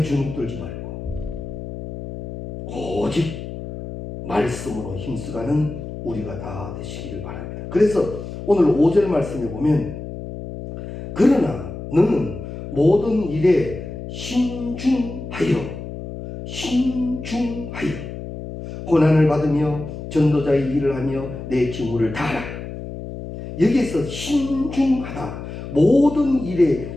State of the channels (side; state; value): left; noise; hum, 9 dB below the sound